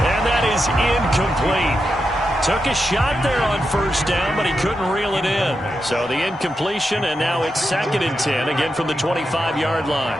and that is incomplete. Took a shot there on first down, but he couldn't reel it in. So the incompletion, and now it's 2nd and 10, again from the 25-yard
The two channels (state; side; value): normal; both; correlation 0.87